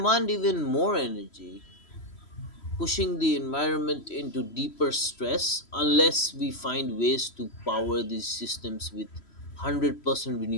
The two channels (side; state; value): right; late; 3.1 ms